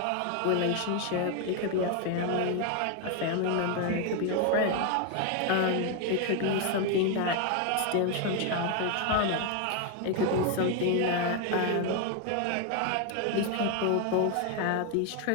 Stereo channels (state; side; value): different; both; correlation 0.01